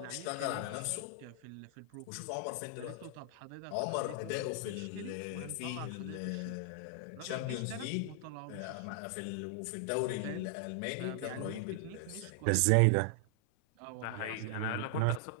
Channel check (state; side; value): different; both; correlation 0.00